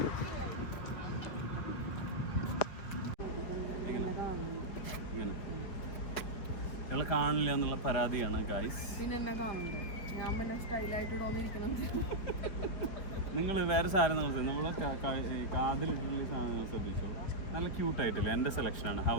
കാണില്ല എന്നുള്ള പരാതിയാണ് ഗൈസ്. പിന്നെ എന്നെ കാണണ്ടേ? ഞാൻ പിന്നെ സ്റ്റൈലായിട്ട് തോന്നിയിരിക്കണം. നിങ്ങൾ വേറെ സാധനം നമ്മളെ കാതിലിട്ടുള്ള സാധനങ്ങൾ ശ്രദ്ധിച്ചോ. നല്ല ക്യൂട്ടായിട്ടില്ല. എൻ്റെ സെലക്ഷനാണ്. How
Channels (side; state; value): right; late; 5.0 ms